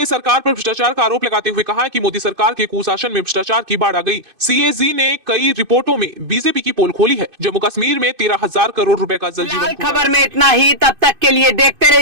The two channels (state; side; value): late; left; 2.5 ms